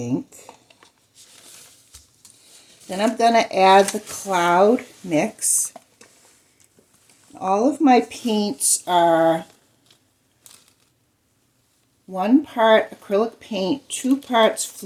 Then I'm going to add the cloud mix. All of my paints are 1 part acrylic paint, 2 parts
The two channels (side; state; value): both; identical; correlation 1.00